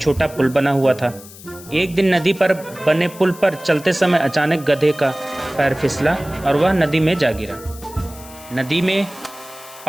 पुल बना हुआ था। एक दिन नदी पर बने पुल पर चलते समय अचानक गधे का पैर फिसला और वह नदी में जा गिरा। नदी में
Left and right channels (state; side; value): noise; left; hiss, 18 dB below the sound